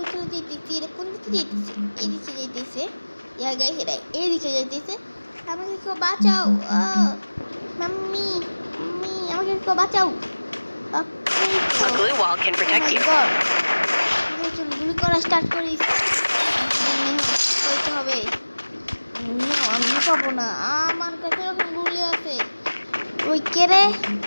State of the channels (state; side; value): inverted; both; correlation -1.00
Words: চলে যেতেছি? এটা কোন দিকে যেতেছে? এদিকে যেতেছে। ইয়া গাইস, এটা এদিকে যেতেছে। আমাকে কেউ বাঁচাও। মাম্মি আমাকে কেউ বাঁচাও। A glue wall can protect you. গুলি করা স্টার্ট করিস। করতে হবে। আমি পাবো না, আমার কাছে এখন গুলি আছে। ওই কে রে?